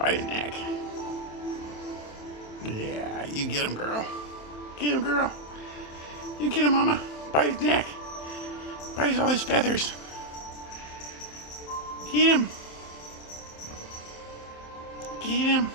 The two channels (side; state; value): right; late; 27 ms